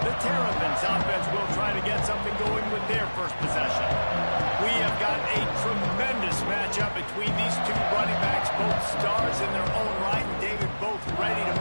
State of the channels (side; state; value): both; inverted; correlation -1.00